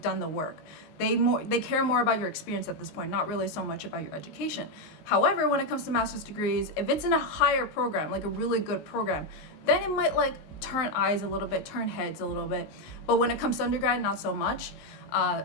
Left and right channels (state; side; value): late; right; 19 ms